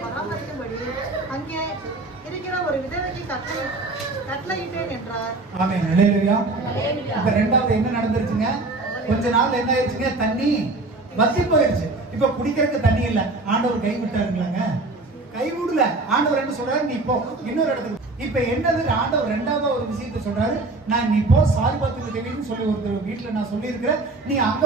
பராமரிக்கும்படி அங்கே இருக்கிற ஒரு விதவைக்கு கட்டளையிட்டேன் என்றார். ஆமென். அல்லேலூயா. இப்ப ரெண்டாவது என்ன நடந்துருச்சுங்க? கொஞ்ச நாள் என்ன ஆயிடுச்சுங்க, தண்ணி வத்தி போயிடுச்சு. இப்ப குடிக்கிறதுக்கு தண்ணி இல்ல. ஆண்டவர் கை விட்டாருங்களாங்க? கைவிடல. ஆண்டவர் என்ன சொல்றாரு, நீ போ இன்னொரு இடத்துக்கு. இப்ப என்னது, ஆண்டவர் ரெண்டாவது ஒரு விஷயத்தை சொல்றாரு. நான் நீ போ சாரிபாத்துக்கு தேவைன்னு சொல்லி ஒரு வீட்டுல நான் சொல்லி இருக்கிறேன், நீ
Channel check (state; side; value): quieter; left; 3.2 dB